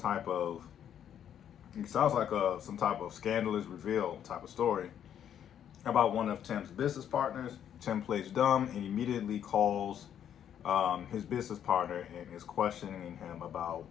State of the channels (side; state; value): right; quieter; 9.5 dB